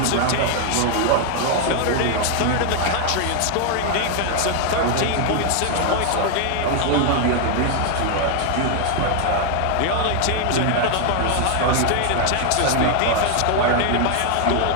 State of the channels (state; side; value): different; both; correlation 0.00